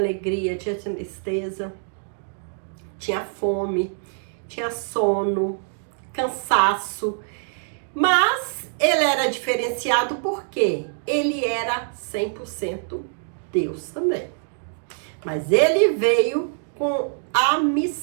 tinha tristeza, tinha fome, tinha sono, cansaço. Mas ele era diferenciado porque ele era 100% Deus também. Mas ele veio com a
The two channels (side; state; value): left; silent; digital silence